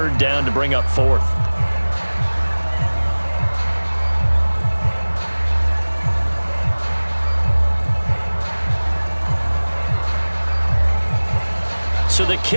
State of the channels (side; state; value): both; inverted; correlation -1.00